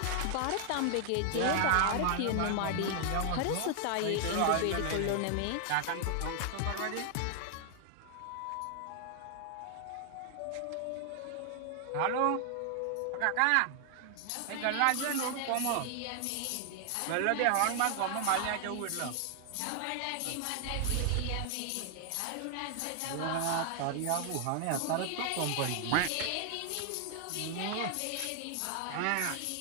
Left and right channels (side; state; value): both; different; correlation 0.00